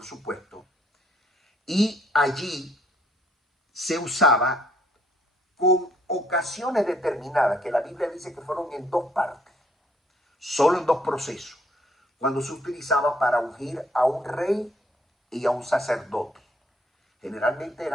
supuesto, y allí se usaba con ocasiones determinadas, que la Biblia dice que fueron en 2 partes, solo en 2 procesos, cuando se utilizaba para ungir a un rey y a un sacerdote. Generalmente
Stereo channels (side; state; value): both; normal; correlation 0.66